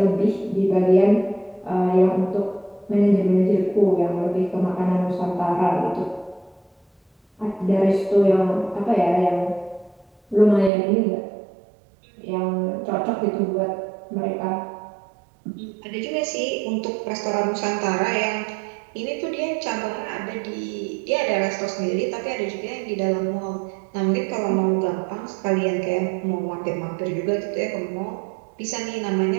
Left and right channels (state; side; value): drops out; left; at 10.7 s